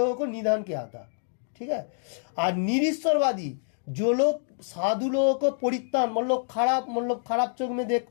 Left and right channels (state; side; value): silent; right; digital silence